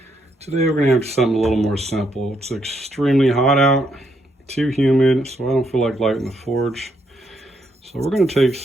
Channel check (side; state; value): both; normal; correlation 0.76